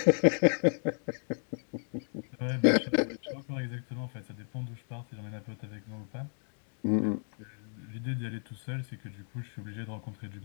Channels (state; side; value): silent; right; 56 dB below the other